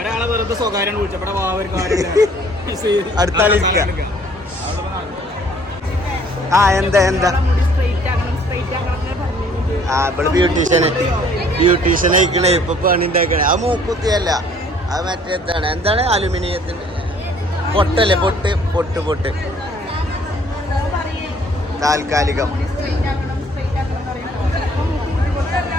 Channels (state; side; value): normal; both; correlation 0.58